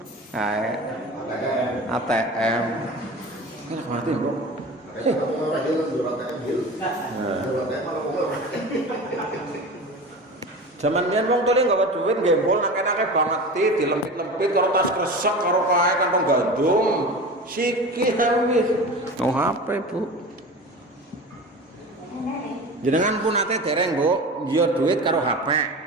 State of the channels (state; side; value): normal; both; correlation 0.33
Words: ATM. Kan mati, Bro. Zaman biyen wong tole gawe duit gembol nang enake banget dilempit-lempit karo tas kresek karo kae kantong gandum. Siki wis. No HP, Bu. Jenengan pun ate dereng, Bu, njiyo duit karo HP.